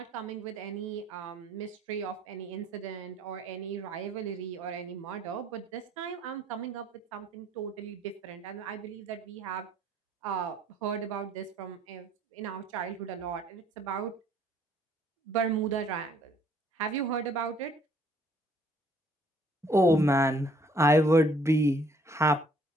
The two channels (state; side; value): normal; both; correlation 0.61